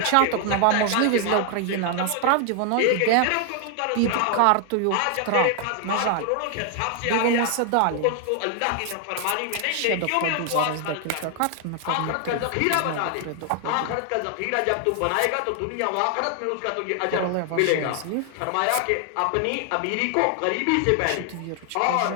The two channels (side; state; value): both; different; correlation 0.00